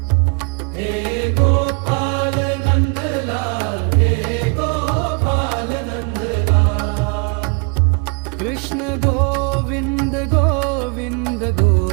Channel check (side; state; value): left; quieter; 34.8 dB